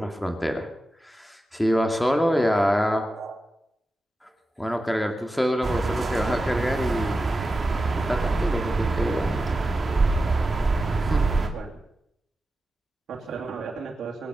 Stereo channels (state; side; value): normal; both; correlation 0.92